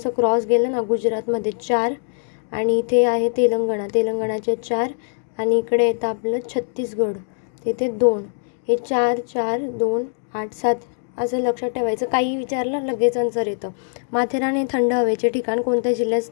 क्रॉस गेलं ना गुजरातमध्ये 4 आणि इथे आहे तेलंगणाचे 4 आणि इकडे येतं आपलं छत्तीसगड. तिथे 2, हे 4 4 2 8 7 असं लक्षात ठेवायचं. काही विचारलं लगेच आन्सर येतं. माथेरान हे थंड हवेचे ठिकाण कोणत्या जिल्ह्यात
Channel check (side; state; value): right; silent; digital silence